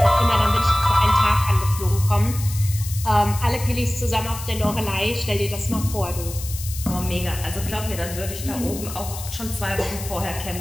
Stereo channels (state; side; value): noise; left; hiss, 11 dB below the sound